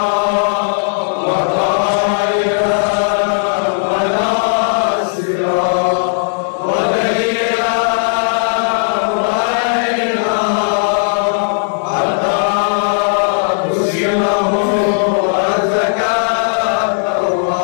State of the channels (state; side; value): silent; right; digital silence